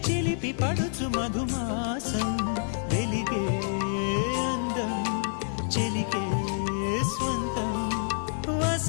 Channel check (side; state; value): right; silent; digital silence